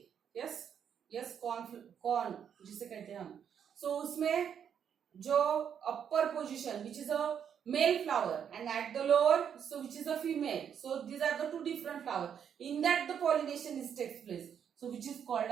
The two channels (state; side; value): quieter; left; 8.2 dB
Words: यस, यस, कॉर्न जिसे कहते हैं हम. सो उसमें जो upper position which is a male flower and at the lower so which is a female, so these are the two different flower, in that the pollination is takes place, so which is